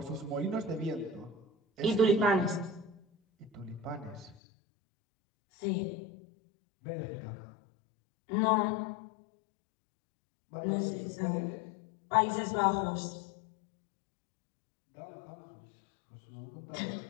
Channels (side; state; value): right; drops out; at 4.4 s